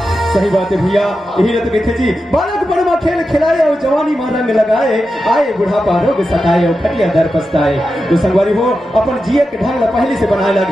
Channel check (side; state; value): both; normal; correlation 0.90